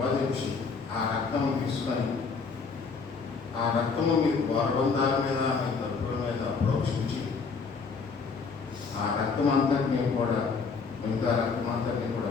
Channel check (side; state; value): right; quieter; 5.0 dB